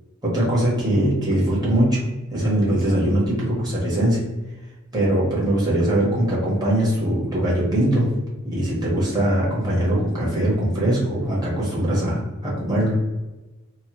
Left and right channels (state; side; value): normal; both; correlation 0.67